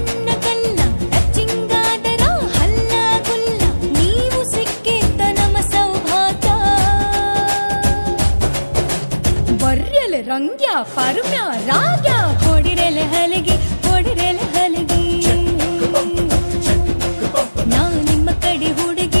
ರಂಗ್ಯ ಪರ್ಮ್ಯ ರಾಗ್ಯ ಹೊಡಿರೆಲೆ ಹಲಿಗೆ ಹೊಡಿರೆಲೆ ಹಲಿಗೆ ನಾ ನಿಮ್ಮ ಕಡೆ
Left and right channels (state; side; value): inverted; both; correlation -1.00